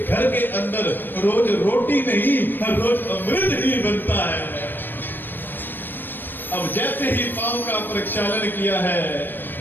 के अंदर रोज रोटी नहीं, हर रोज अमृत ही बनता है। अब जैसे ही पांव का प्रक्षालन किया है,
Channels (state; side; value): late; right; 0.094 ms